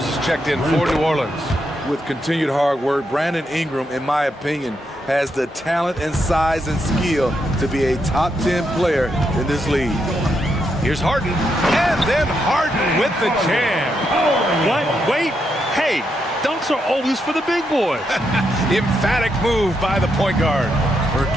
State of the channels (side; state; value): both; normal; correlation 0.81